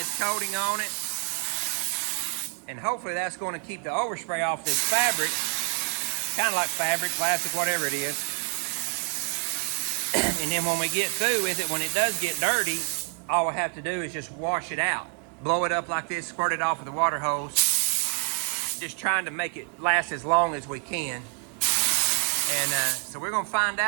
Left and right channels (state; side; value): quieter; left; 37.2 dB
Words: coating on it. And hopefully that's going to keep the overspray off this fabric. Kind of like fabric, plastic, whatever it is. And then when we get through with it, when it does get dirty, all we have to do is just wash it out. Blow it up like this, squirt it off with the water hose. Just trying to make it last as long as we can. And so we're gonna find